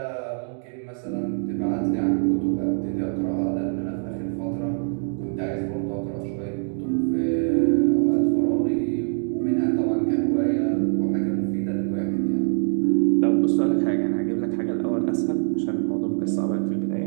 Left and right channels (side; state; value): left; silent; 63 dB below the other